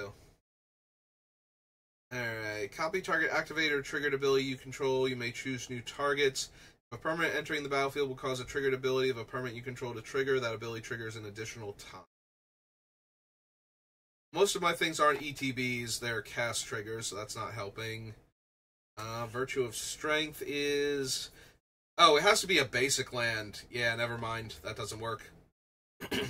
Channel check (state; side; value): identical; both; correlation 1.00